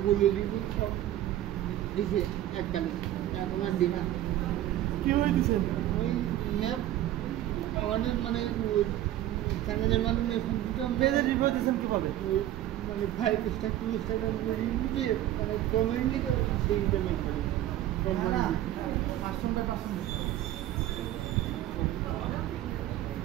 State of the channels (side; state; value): left; quieter; 13.3 dB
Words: গুগল রিভিউ সব দিছে এককালে, এখন আর দিই না। কি হয়ে দিচ্ছেন? ওই ম্যাপ আমাদের মানে চ্যানেলের মাধ্যমে পেজে রিভিউ দিচ্ছেন কিভাবে? ওই মানে 5 স্টার 2 স্টার রিভিউ দিয়ে মানে কমেন্ট লিখে সেই পেমেন্ট করে